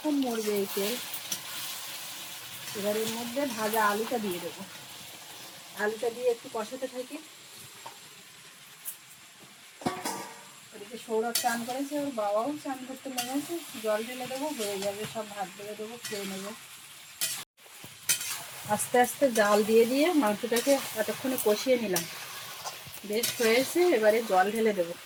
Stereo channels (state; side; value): identical; both; correlation 1.00